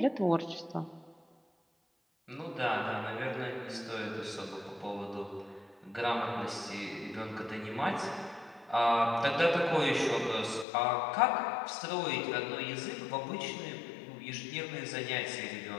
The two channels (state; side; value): drops out; right; at 10.7 s